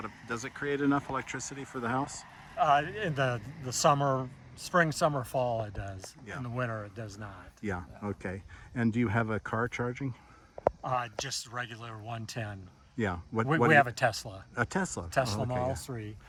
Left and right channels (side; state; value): both; identical; correlation 1.00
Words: of, does it create enough electricity for the house? In the summer, spring, summer, fall, it does. Yeah. In the winter, it does not. Yeah, okay. And do you have a car charging? Just regular 110. Yeah. We have a Tesla. A Tesla? Tesla Oh, okay, Model yeah. 3.